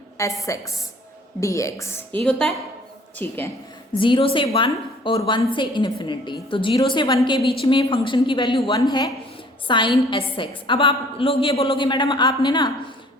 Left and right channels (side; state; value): both; normal; correlation 0.55